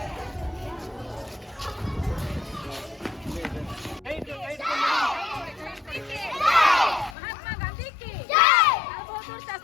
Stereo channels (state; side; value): drops out; right; at 7.2 s